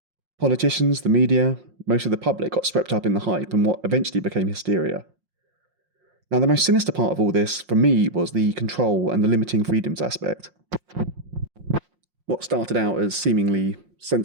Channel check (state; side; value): late; left; 5.6 ms